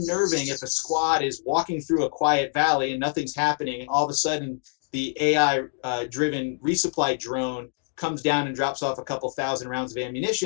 if a squad is walking through a quiet valley and nothing's happening, and all of a sudden the AI-driven resupply drone comes down and drops off a couple thousand rounds of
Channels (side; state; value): right; silent; digital silence